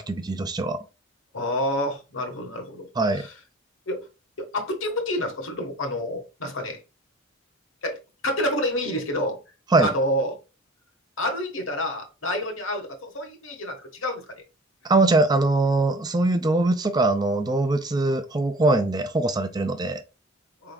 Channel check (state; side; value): normal; both; correlation 0.42